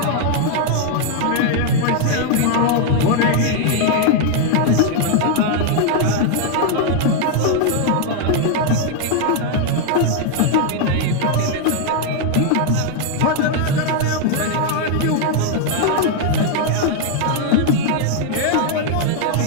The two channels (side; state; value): both; different; correlation 0.00